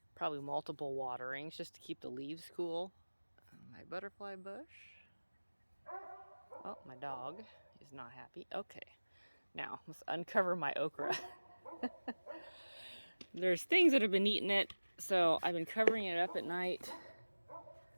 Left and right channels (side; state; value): both; inverted; correlation -1.00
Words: probably multiple waterings just to keep the leaves cool. My butterfly bush. Oh, my dog is not happy. Okay, now let's uncover my okra. There's things that have been eating it, so I've been covering it up at night.